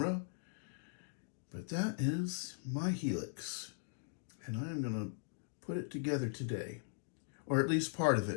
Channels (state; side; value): silent; right; digital silence